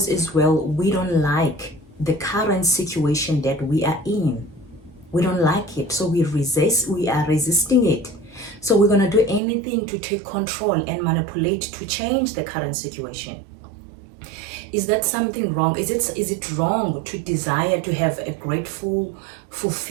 as well, we don't like the current situation that we are in. We don't like it. So we are resisting it. So we're going to do anything to take control and manipulate to change the current situation. Is that something wrong? Is it wrong to desire to have a grateful,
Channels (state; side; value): drops out; left; at 9.4 s